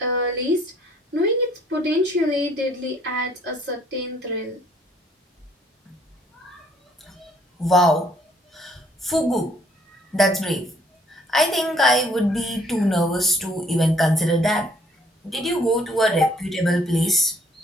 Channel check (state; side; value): normal; both; correlation 0.62